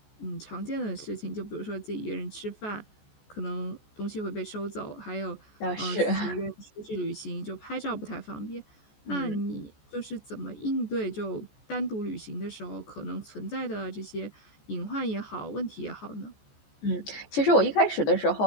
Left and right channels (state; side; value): late; right; 14 ms